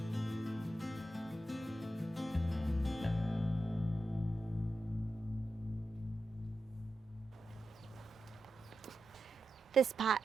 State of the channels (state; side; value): normal; both; correlation 0.90